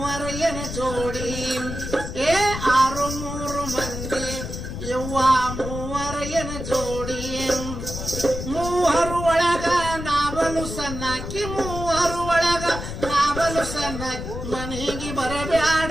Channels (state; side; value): noise; left; rumble, 7 dB below the sound